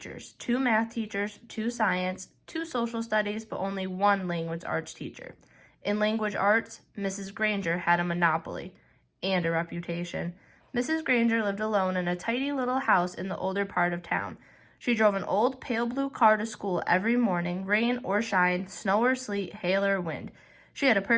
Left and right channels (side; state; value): both; identical; correlation 1.00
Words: 2 math teachers, 2 science, 2 social studies, but only 1 language arts teacher. In language arts, Mrs. Granger had a monopoly and a reputation. Mrs. Granger lived alone in a tidy little house in the older part of town. She drove an old pale blue car to school every morning, rain or shine, snow or sleet, hail or wind. She had a